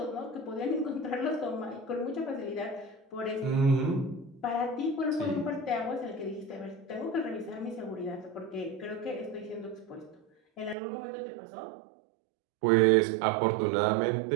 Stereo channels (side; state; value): left; drops out; at 10.8 s